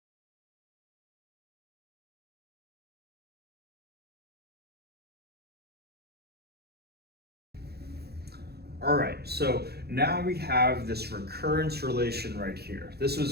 All right, so now we have this recurrence relation right here. This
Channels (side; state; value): left; late; 0.47 ms